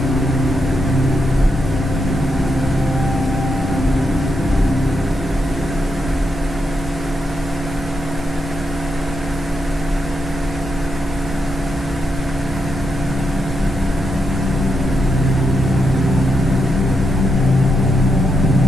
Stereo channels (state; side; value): normal; both; correlation 0.83